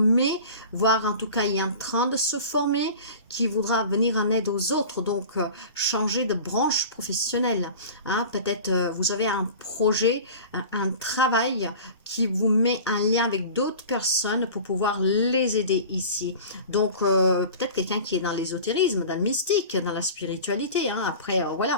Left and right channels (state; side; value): inverted; both; correlation -0.38